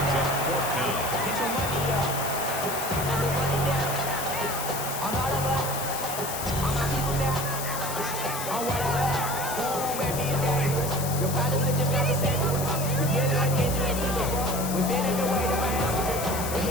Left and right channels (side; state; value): left; noise; hiss, 6 dB below the sound